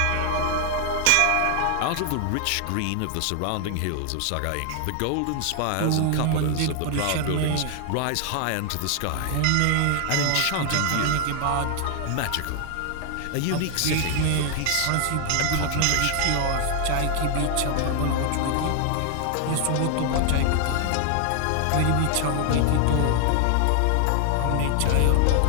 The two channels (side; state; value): both; different; correlation 0.00